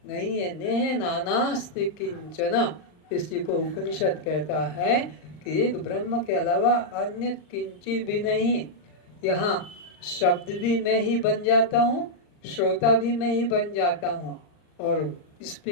नहीं है। नेह नानास्ति किंचन, इसी को उपनिषद कहता है कि एक ब्रह्म के अलावा अन्य किंचित भी नहीं। यहाँ शब्द भी मैं ही बन जाता हूँ, श्रोता भी मैं ही बन जाता हूँ, और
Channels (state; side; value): late; right; 39 ms